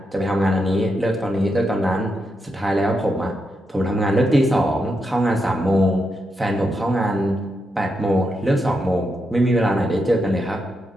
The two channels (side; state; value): both; normal; correlation 0.84